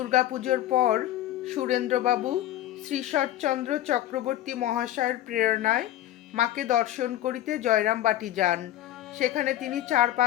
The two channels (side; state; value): right; quieter; 13.4 dB